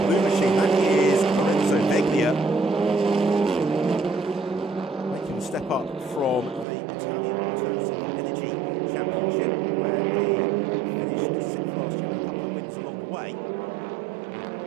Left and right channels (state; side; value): drops out; left; at 6.7 s